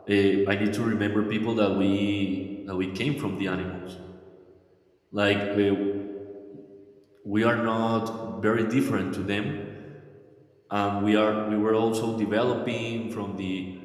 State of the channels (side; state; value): both; identical; correlation 1.00